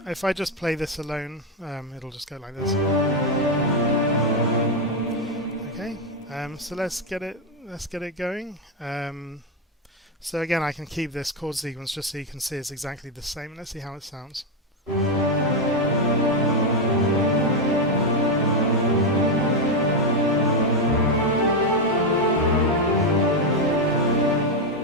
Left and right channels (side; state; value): both; normal; correlation 0.05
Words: if I just play this alone, it'll just go like this. Okay, so let's get it going. So again, I can keep this chord sequence just so you can see it's exactly the same. Let's see how it sounds.